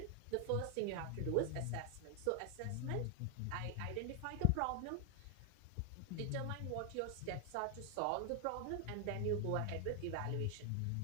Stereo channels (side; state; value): both; different; correlation 0.00